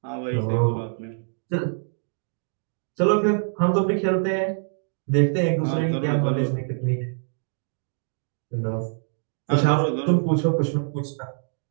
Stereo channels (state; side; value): silent; left; digital silence